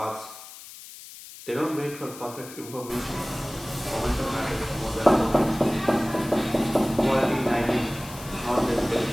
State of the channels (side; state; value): left; noise; hiss, 16 dB below the sound